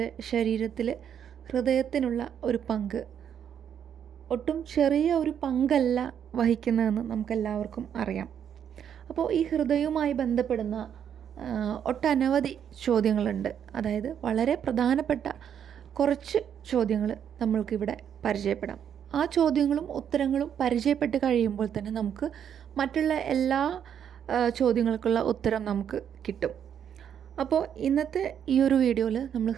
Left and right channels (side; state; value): left; quieter; 8.7 dB